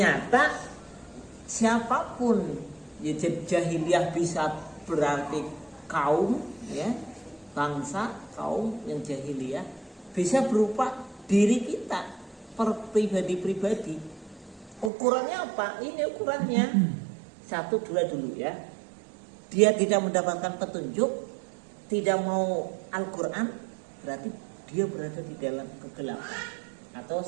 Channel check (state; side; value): drops out; left; at 14.9 s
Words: siapapun, ya jahiliyah bisa berarti kaum, ya bangsa, kaum yang jahiliyah bisa berupa diri kita, per pribadi-pribadi. Ukurannya apa? Ini ukurannya 1, 2 dulu ya. Dia tidak mendapatkan petunjuk, tidak mau Al-Quran, berarti dia berada di dalam kegelapan, atau